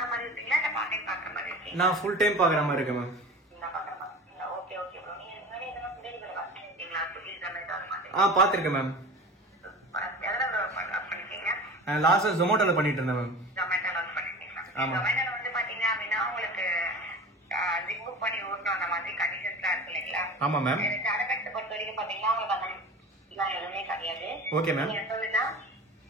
நான் ஃபுல் டைம் பாக்குற மாதிரி இருக்கேன் மேம். பாத்திருக்கேன் மேம். லாஸ்டா ஜொமேட்டோல பண்ணிட்டு இருந்தேன் மேம். ஆமா. ஆமா ma'am. Okay ma'am.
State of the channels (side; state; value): both; normal; correlation 0.35